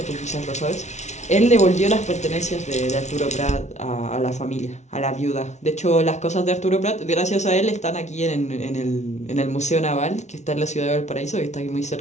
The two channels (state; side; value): late; right; 0.33 ms